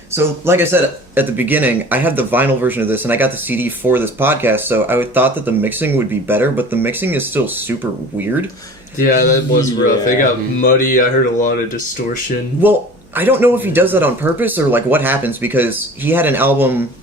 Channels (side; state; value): both; normal; correlation 0.41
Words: So, like I said at the beginning, I had the vinyl version of this, and I got the CD for this podcast, so I thought that the mixing would be better, but the mixing is still super weird. Yeah, that was rough. It got muddy. I heard a lot of distortion. Well, I don't know if he does that on purpose or what happens, because he had a